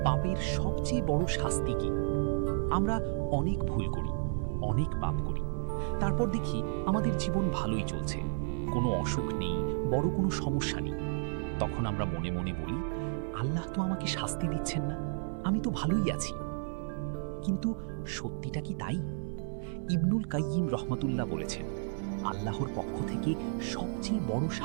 পাপের সবচেয়ে বড় শাস্তি কি? আমরা অনেক ভুল করি, অনেক পাপ করি, তারপর দেখি আমাদের জীবন ভালোই চলছে, কোনো অসুখ নেই, বড় কোনো সমস্যা নেই। তখন আমরা মনে মনে বলি, আল্লাহ তো আমাকে শাস্তি দিচ্ছেন না, আমি তো ভালোই আছি। কিন্তু সত্যিটা কি তাই? ইবনুল কাইয়িম রহমাতুল্লাহ বলেছেন, আল্লাহর পক্ষ থেকে সবচেয়ে বড়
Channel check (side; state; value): left; silent; 56 dB below the other